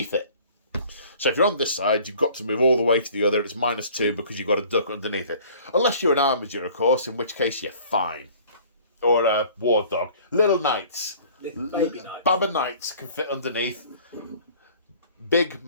it. So if you're on this side, you've got to move all the way to the other. It's -2 because you've got to duck underneath it. Unless you're an Armiger, of course, in which case you're fine. Or a War Dog. Little Knights. Baby Knights. Baba Knights can fit underneath. Big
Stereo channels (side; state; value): both; inverted; correlation -0.51